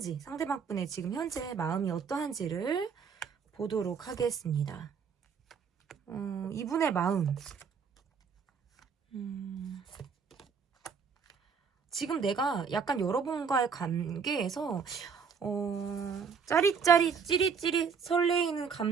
상대방 분의 지금 현재 마음이 어떠한지를 보도록 하겠습니다. 이분의 마음. 지금 내가 약간 여러분과의 관계에서 짜릿짜릿 찌릿찌릿 설레이는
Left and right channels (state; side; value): quieter; left; 6.2 dB